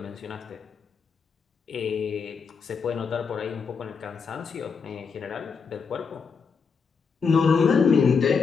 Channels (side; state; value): right; quieter; 5.5 dB